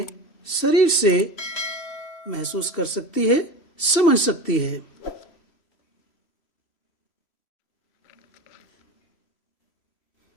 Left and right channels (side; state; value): right; late; 3.0 ms